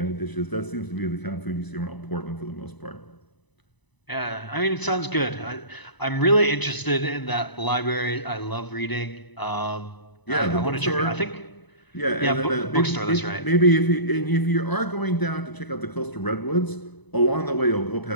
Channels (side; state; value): right; late; 1.0 ms